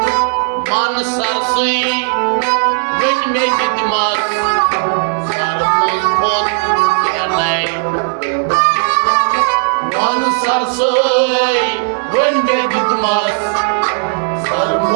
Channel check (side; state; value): left; silent; digital silence